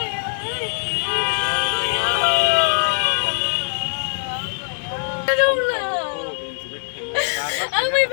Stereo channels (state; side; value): silent; right; digital silence